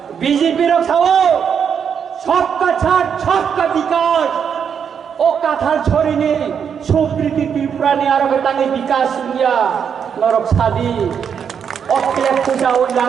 BJP ro sawo सबका छाट सबका विकास ओ काथाल छोरीने सुप्रीति त्रिपुरा ने आरो गतांगे विकास दुनिया नरक सादी Oakley पूजा ओ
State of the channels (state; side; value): quieter; left; 7.4 dB